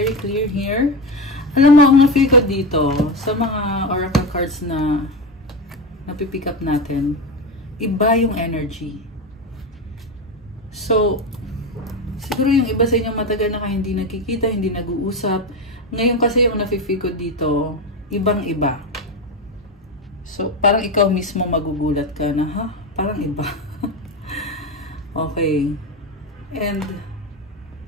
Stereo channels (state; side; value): normal; both; correlation 0.16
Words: clear here. Alam mo, ang na-feel ko dito, sa mga oracle cards na napipick up natin, iba yung energy. So, siguro yung iba sa inyo matagal na kayo hindi nakikita, hindi nag-uusap. Ngayon kasi yung nafe-feel ko dito, ibang-iba. So, parang ikaw mismo magugulat ka na, ha? Parang iba. Okay. And